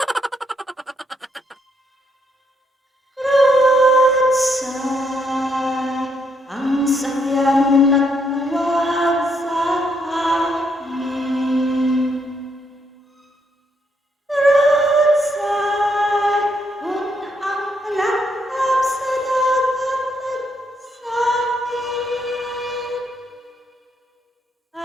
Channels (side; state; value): both; normal; correlation 0.75